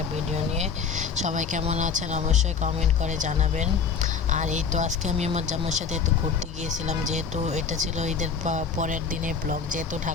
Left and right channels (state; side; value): quieter; right; 6.0 dB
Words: ভিডিও নিয়ে। সবাই কেমন আছেন অবশ্যই কমেন্ট করে জানাবেন। আর এই তো আজকে আমি আমার জামাইয়ের সাথে একটু ঘুরতে গিয়েছিলাম, যেহেতু এটা ছিল ঈদের পরের দিনের ব্লগ। যেহেতু